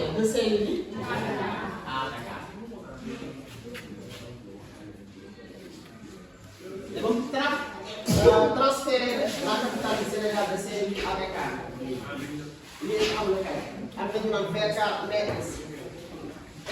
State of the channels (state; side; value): identical; both; correlation 1.00